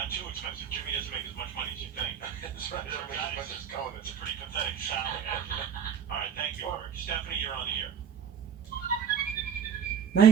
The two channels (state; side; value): quieter; left; 7.8 dB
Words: too expensive. Jimmy doesn't make as much money as you think. That's right. I mean, as much as Conan. It's a pretty pathetic salary. All right, thank you, Eric. Stephanie, you're on here.